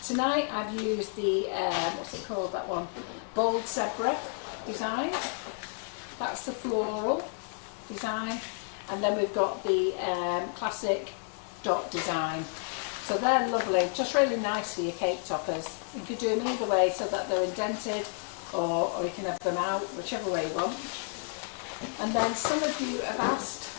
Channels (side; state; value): right; silent; 57 dB below the other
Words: Tonight I've used the, what's it called, that one? Bold Zebra design. That's the floral design. And then we've got the classic dot design. So they're lovely, just really nice for your cake toppers. You could do them either way so that they're indented, or you can have them out, whichever way you want. And then some of you have asked,